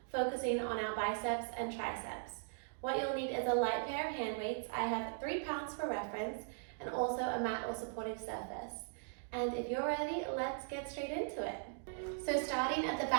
focusing on our biceps and triceps. What you'll need is a light pair of hand weights. I have 3 pounds for reference, and also a mat or supportive surface. And if you're ready, let's get straight into it. So starting at the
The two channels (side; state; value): left; silent; digital silence